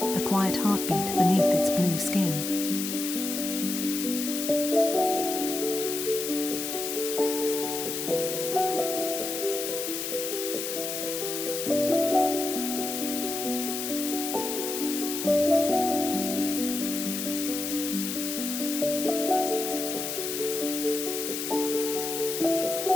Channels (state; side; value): noise; left; hiss, 4 dB below the sound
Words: a quiet heartbeat beneath its blue skin.